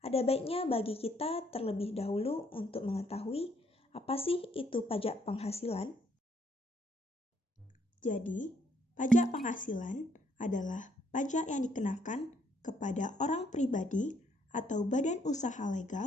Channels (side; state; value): both; normal; correlation 0.69